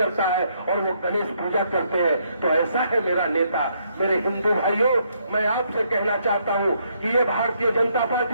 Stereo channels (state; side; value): inverted; both; correlation -0.73